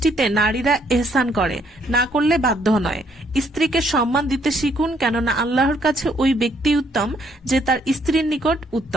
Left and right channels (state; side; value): normal; both; correlation 0.68